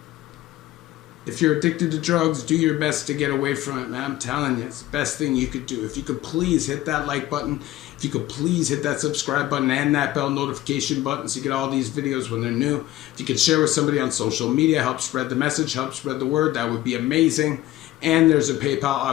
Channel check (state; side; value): quieter; right; 15.3 dB